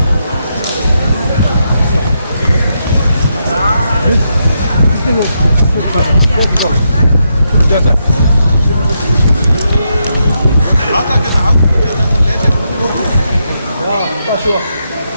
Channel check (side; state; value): both; inverted; correlation -0.82